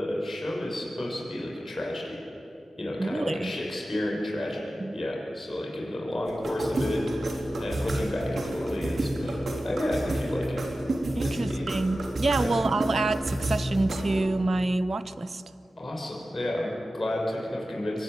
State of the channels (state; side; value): normal; both; correlation 0.94